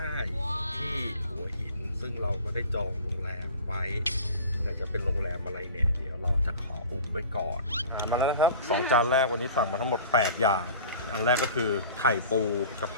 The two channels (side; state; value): both; inverted; correlation -0.41